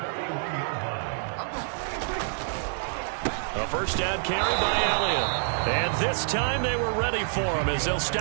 A first down carry by Elliott. And this time they were ready for him as they'll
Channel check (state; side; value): silent; left; digital silence